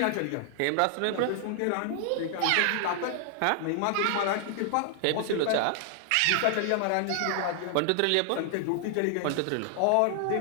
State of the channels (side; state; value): both; different; correlation 0.00